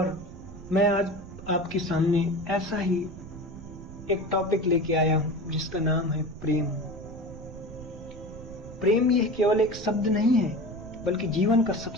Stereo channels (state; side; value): noise; right; rumble, 14 dB below the sound